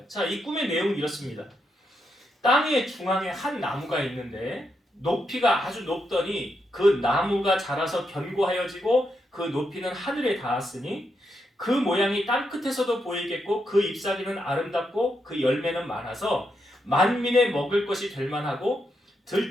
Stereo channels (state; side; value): normal; both; correlation 0.82